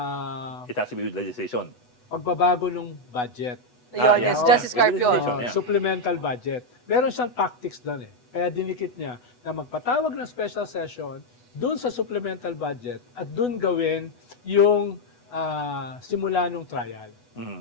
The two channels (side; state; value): right; late; 8.1 ms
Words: It has to be with legislation. pagbabago ng budget. Yun, yeah. yes, Justice Carpio. Legislation, yeah. Supplemental budget. Meron siyang tactics doon eh. Kaya dinikit niya na magpatawag ng special session doon sa supplemental budget at doon gawin yung simula ng trial. Mhm.